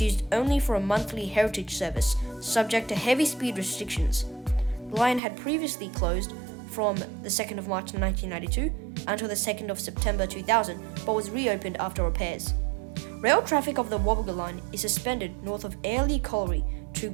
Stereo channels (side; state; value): left; drops out; at 5.2 s